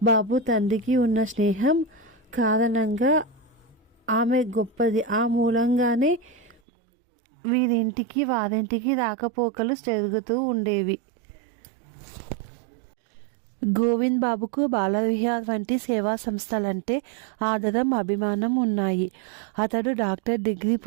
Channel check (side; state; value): left; drops out; at 6.6 s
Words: బాబు తండ్రికి ఉన్న స్నేహం కారణంగా ఆమె గొప్పది. ఆ మూలంగానే వీరింటికి వారింటికి రాకపోకలు జరుగుతూ ఉండేవి. గోవింద్ బాబుకు బాలవిహార్ వంటి సేవా సంస్థలంటే ఆదరం, అభిమానం ఉన్నాయి. అతడు డాక్టర్ డిగ్రీ